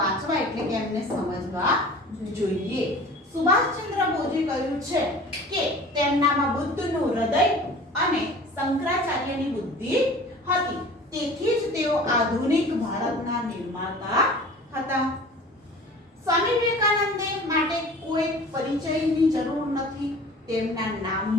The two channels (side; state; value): both; normal; correlation 0.43